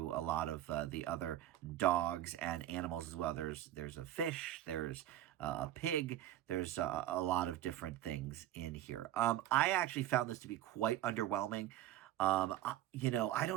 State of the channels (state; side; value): quieter; left; 13.0 dB